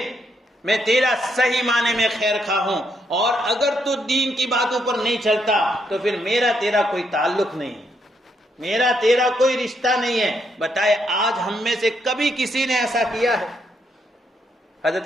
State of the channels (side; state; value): both; normal; correlation 0.76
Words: میں تیرا صحیح معنی میں خیر خواہ ہوں, اور اگر تو دین کی باتوں پر نہیں چلتا تو پھر میرا تیرا کوئی تعلق نہیں, میرا تیرا کوئی رشتہ نہیں ہے. بتائے آج ہم میں سے کبھی کسی نے ایسا کیا ہے؟